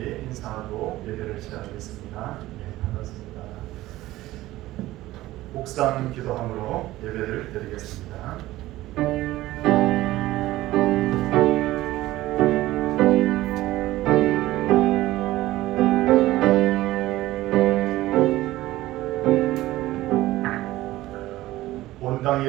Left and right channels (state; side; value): quieter; left; 16.6 dB